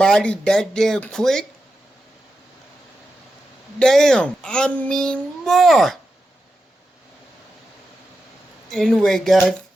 that damn quick. Damn, I mean more. Anyway, guys,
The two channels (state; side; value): normal; both; correlation 0.89